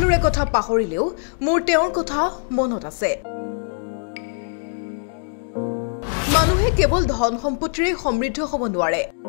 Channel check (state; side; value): silent; right; digital silence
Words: কথা পাহৰিলেও মোৰ তেওঁৰ কথা মনত আছে। মানুহে কেৱল ধন সম্পত্তিৰে সমৃদ্ধ হ'ব নোৱাৰে।